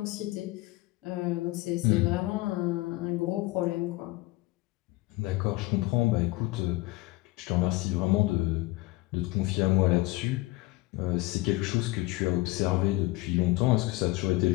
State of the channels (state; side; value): quieter; right; 20.5 dB